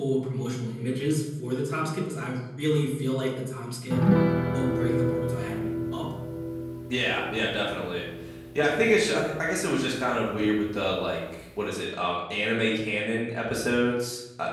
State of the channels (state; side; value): identical; both; correlation 1.00